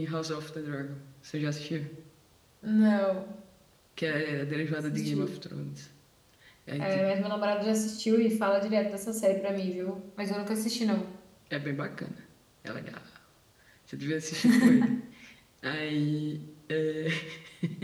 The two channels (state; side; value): identical; both; correlation 1.00